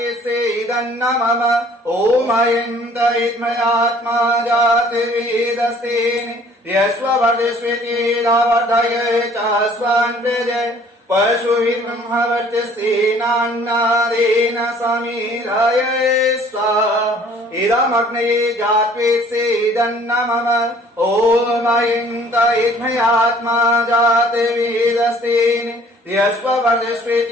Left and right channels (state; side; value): normal; both; correlation 0.55